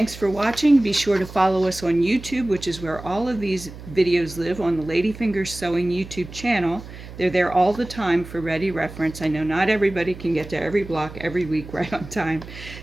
for watching. Be sure to follow us on YouTube, which is where all of these videos live, on the Ladyfingers Sewing YouTube channel. They're there all the time for ready reference. I know not everybody can get to every block every week right on time,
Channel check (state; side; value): noise; right; hum, 14 dB below the sound